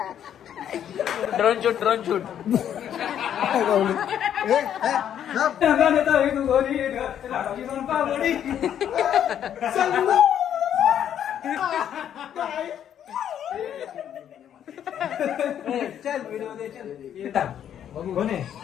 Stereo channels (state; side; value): quieter; right; 9.8 dB